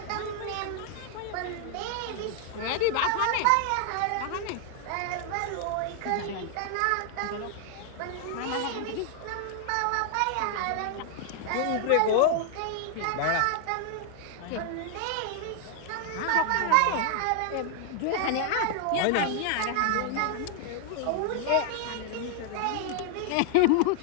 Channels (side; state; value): both; different; correlation 0.00